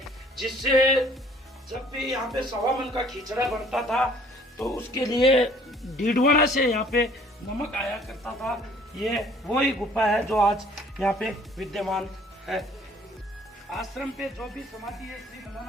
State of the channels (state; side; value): normal; both; correlation 0.56